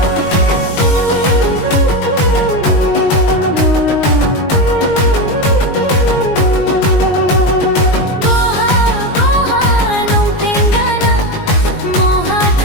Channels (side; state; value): right; late; 19 ms